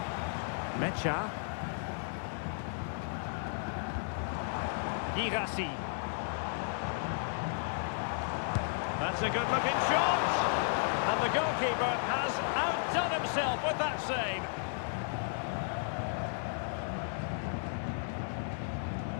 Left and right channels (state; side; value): silent; right; digital silence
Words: Mecha. Girassi. That's a good looking shot. And the goalkeeper has outdone himself with that save.